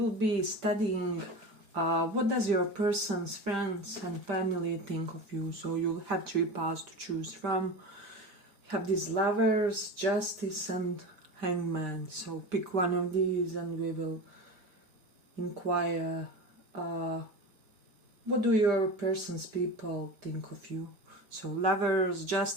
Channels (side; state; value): left; late; 5.0 ms